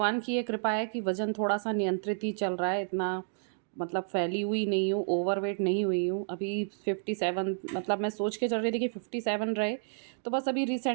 की ये कृपा है कि वज़न थोड़ा सा नियंत्रित ही चल रहा है। इतना मतलब फैली हुई नहीं हूँ, ओवरवेट नहीं हुई हूँ। अभी 57 मतलब मैं सोच के चल रही थी कि 57 रहे, तो बस अभी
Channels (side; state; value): left; silent; digital silence